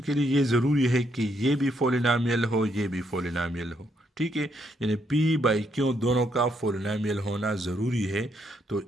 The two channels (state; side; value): normal; both; correlation 0.75